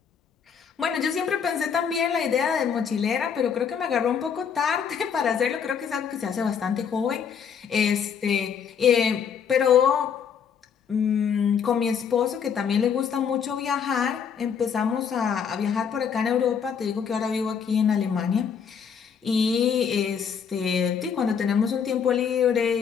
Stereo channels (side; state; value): right; quieter; 7.1 dB